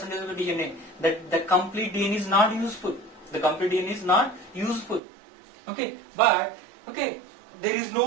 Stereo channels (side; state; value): left; drops out; at 5.0 s